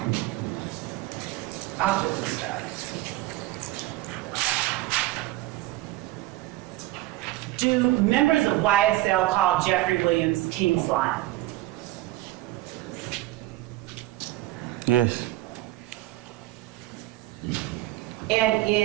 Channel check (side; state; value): left; quieter; 17.3 dB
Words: I'll just start. Do members of YSL call Jeffrey Williams King Slime? Yes. And